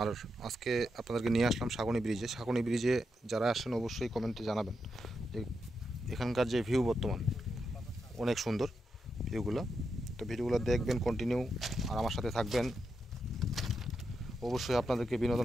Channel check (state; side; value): normal; both; correlation 0.85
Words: আর আজকে আপনাদেরকে নিয়ে আসলাম সাগনি ব্রিজে। সাগনি ব্রিজে যারা আসেন অবশ্যই কমেন্টে জানাবেন যে এখানকার যে ভিউ বর্তমান অনেক সুন্দর ভিউগুলো। তো ভিডিওগুলো দেখবেন কন্টিনিউ, আর আমার সাথে থাকবেন। অবশ্যই আপনাদেরকে